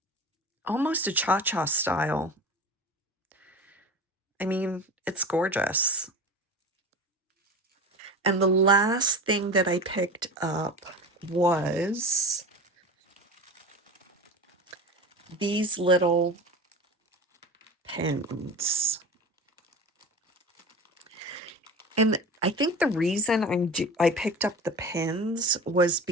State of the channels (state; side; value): normal; both; correlation 0.32